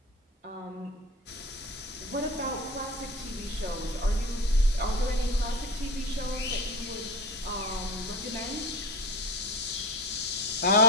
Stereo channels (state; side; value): normal; both; correlation 0.30